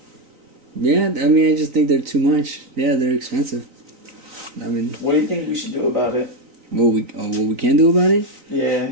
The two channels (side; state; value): left; late; 3.9 ms